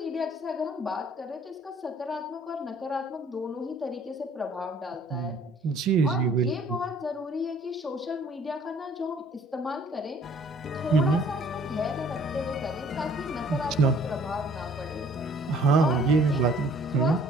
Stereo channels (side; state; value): both; normal; correlation 0.56